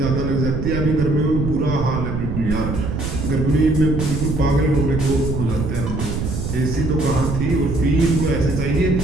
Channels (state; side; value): noise; right; rumble, 3 dB below the sound